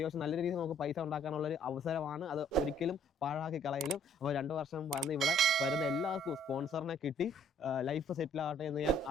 നല്ല രീതിയിൽ നമുക്ക് പൈസ ഉണ്ടാക്കാനുള്ളൊരു അവസരമാണ്. അത് ഒരിക്കലും പാഴാക്കി കളയലും. അപ്പോൾ 2 വർഷം വന്ന് ഇവിടെ വരുന്ന എല്ലാവർക്കും സ്പോൺസറിനെ കിട്ടി ലൈഫ് സെറ്റിൽ ആകട്ടെ എന്ന് ഞാൻ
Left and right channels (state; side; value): normal; both; correlation 0.61